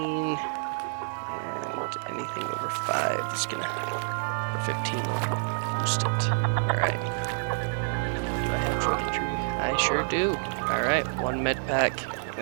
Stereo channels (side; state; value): left; silent; 59 dB below the other